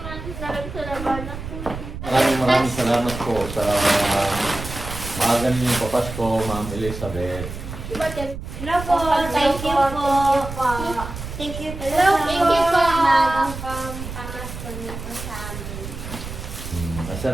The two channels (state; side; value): noise; right; rumble, 9 dB below the sound